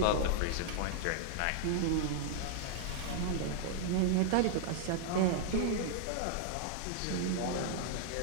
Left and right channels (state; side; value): different; both; correlation -0.01